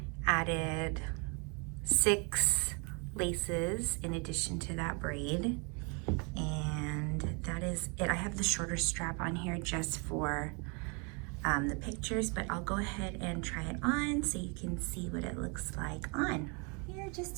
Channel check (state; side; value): quieter; left; 33.7 dB